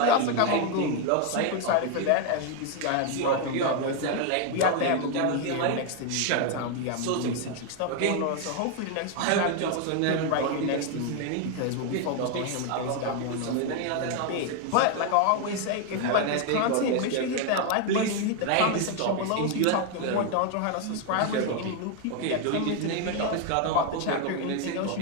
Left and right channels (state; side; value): different; both; correlation 0.01